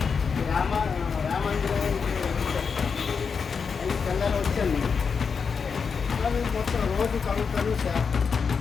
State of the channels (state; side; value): quieter; right; 5.8 dB